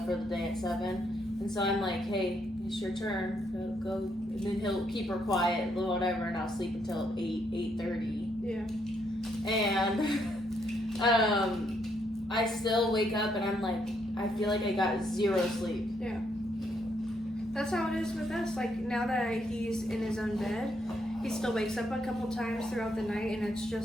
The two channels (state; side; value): normal; both; correlation 0.75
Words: for the day at 7. And so I'm like, hey, it's your turn. Go. And then he'll keep her quiet, whatever, and I'll sleep until 8:30. Yeah. And I still wake up and I'm I feel like I got 0 sleep. Yeah. That's how it is with us. Now that he's in his own bed, he still wakes up a couple times throughout the night, and it's